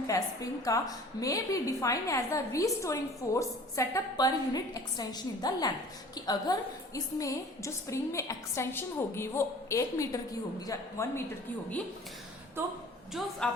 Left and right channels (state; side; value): normal; both; correlation 0.46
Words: है स्प्रिंग का, may be defined as the restoring force setup per unit extension in the length. कि अगर इसमें जो स्प्रिंग में एक्सटेंशन होगी वो 1 मीटर की होगी या 1 मीटर की होगी, तो जो